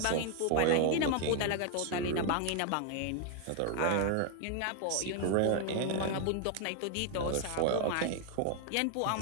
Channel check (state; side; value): different; both; correlation 0.01